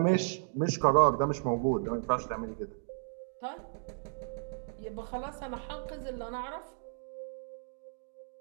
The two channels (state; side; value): silent; left; digital silence